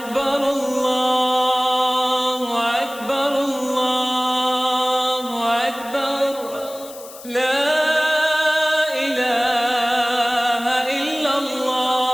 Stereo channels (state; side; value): noise; left; hiss, 17 dB below the sound